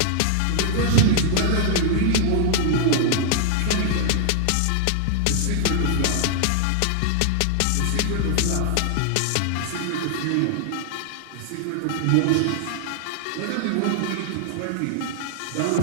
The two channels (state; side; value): different; both; correlation 0.00